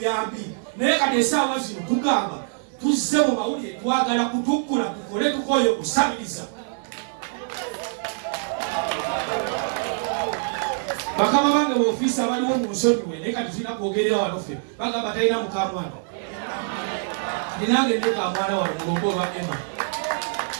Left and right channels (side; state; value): left; silent; digital silence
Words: naye kati essaawa zino tugamba tuzze mu mawulire twagala kutuggula tukole tukoye okusabiriza. Bakama bange b'ofiisi abaliwo mu nsonyiwe naye kati tulina kwogerera wano ffe bagamba talina mukamwana ndinange nekamwana wano mulongo olwa Emma